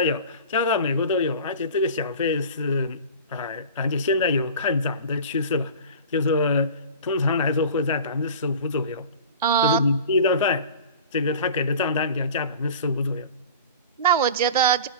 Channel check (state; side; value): inverted; both; correlation -0.38